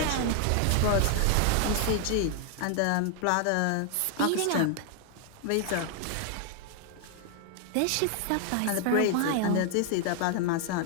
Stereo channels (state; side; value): different; both; correlation 0.00